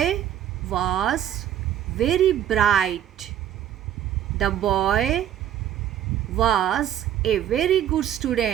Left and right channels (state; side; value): quieter; left; 10.8 dB